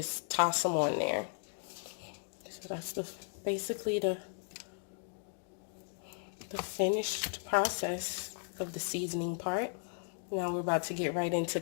toss them on there. So that's basically the finished process of the seasoning part. Now we're about to get right into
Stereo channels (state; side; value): silent; right; 54 dB below the other